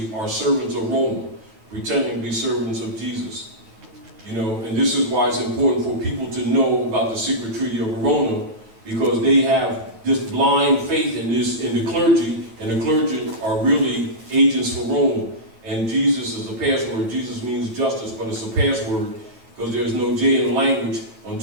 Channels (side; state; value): left; late; 9.4 ms